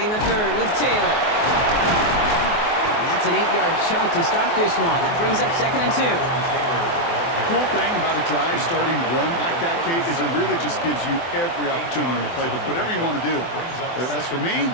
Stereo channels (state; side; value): late; right; 24 ms